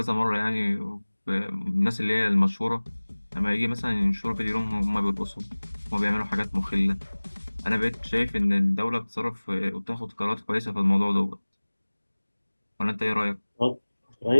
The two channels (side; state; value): both; inverted; correlation -1.00